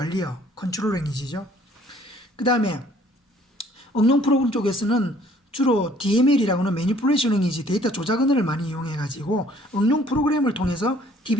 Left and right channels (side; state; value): both; normal; correlation 0.58